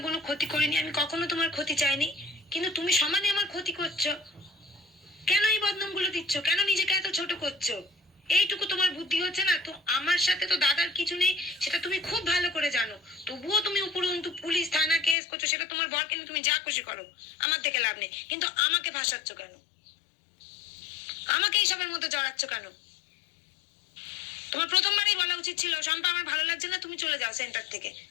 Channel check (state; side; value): drops out; right; at 15.2 s